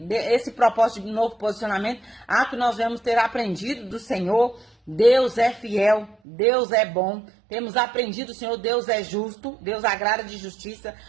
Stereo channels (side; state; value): left; drops out; at 6.2 s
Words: esse propósito de novo posicionamento, a que nós vamos ter aprendido do Senhor. Deus é fiel, Deus é bom, temos aprendido, Senhor, Deus é justo, Deus agrada de justiça,